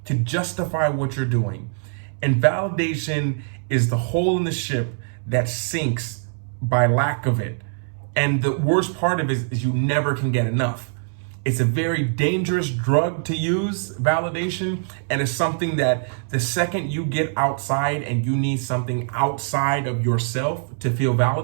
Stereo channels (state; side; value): silent; left; 63 dB below the other